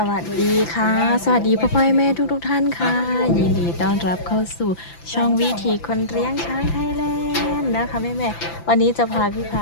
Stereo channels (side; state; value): right; late; 5.9 ms